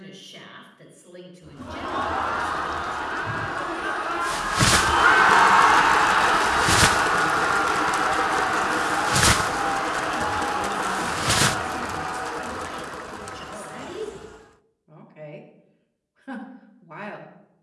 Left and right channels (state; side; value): identical; both; correlation 1.00